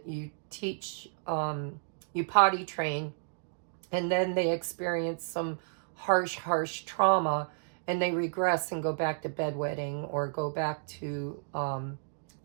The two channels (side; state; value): left; silent; digital silence